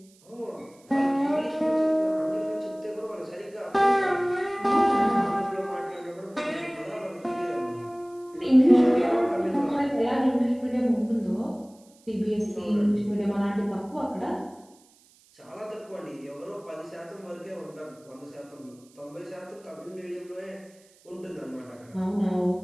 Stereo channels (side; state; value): right; noise; hiss, 29 dB below the sound